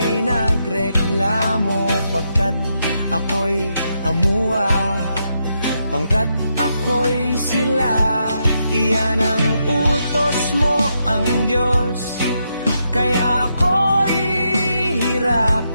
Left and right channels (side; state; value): both; inverted; correlation -0.81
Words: nagreklamo. Pagkat ako'y amuwa, pangkat ako'y sila. Iyan ang utos mo, ang Diyos. Kaya ako'y